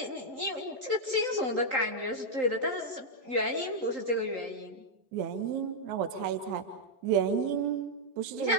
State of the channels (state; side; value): late; left; 3.8 ms